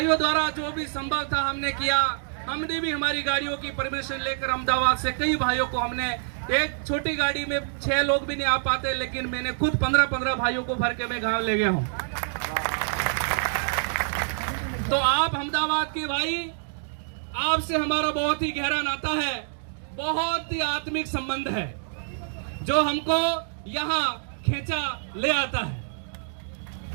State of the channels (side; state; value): left; silent; digital silence